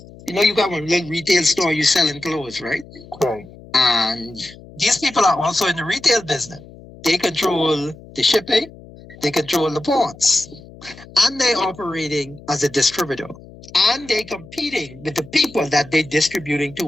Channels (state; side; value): noise; left; hum, 20 dB below the sound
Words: you got one little retail store, you selling clothes, right? Right. And these people are also in the retail business. They control the shipping, they control the ports, and they're operating as a distributor. And they're competing with the people that they're distributing